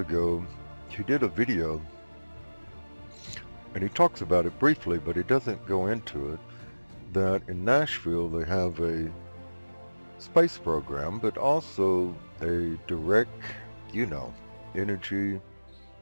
he did a video, and he talks about it briefly, but he doesn't go into it, that in Nashville they have a space program, but also a direct, energy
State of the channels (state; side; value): inverted; both; correlation -1.00